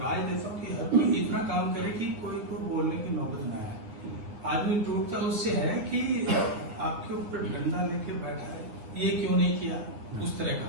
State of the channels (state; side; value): late; left; 9.0 ms